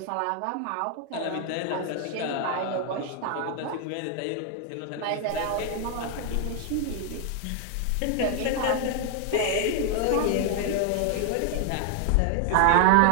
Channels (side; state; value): both; different; correlation 0.00